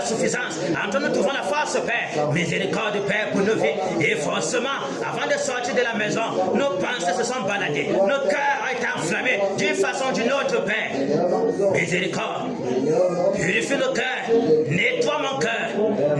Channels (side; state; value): both; identical; correlation 1.00